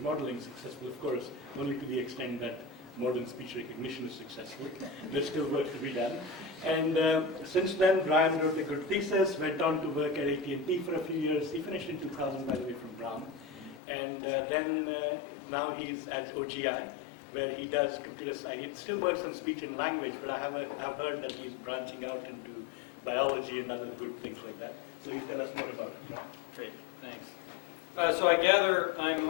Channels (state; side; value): drops out; right; at 13.8 s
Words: modeling. Successful, of course, only to the extent that modern speech recognition is successful. There's still work to be done. And since then, Brian wrote a good thesis, went on to work at AT&T for a few years. He finished in 2000, by the way, from Brown. And then now he's at OGI, where he does computer science. He still works on speech and language, but I've heard that he's branching out into biology and other good things like that. So you tell us more about it. Great, thanks. So I gather I'm